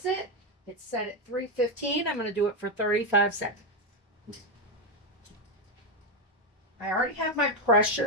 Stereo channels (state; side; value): normal; both; correlation 0.07